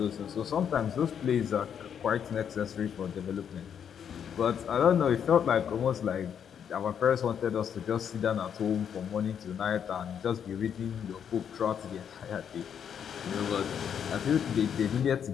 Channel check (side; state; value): right; quieter; 8.2 dB